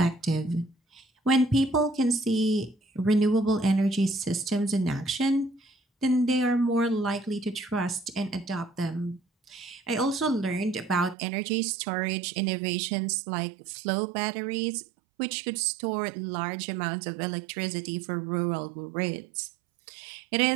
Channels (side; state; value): left; drops out; at 11.2 s